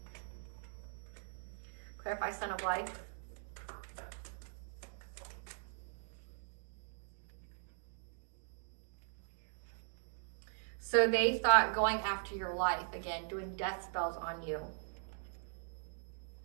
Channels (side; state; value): left; silent; digital silence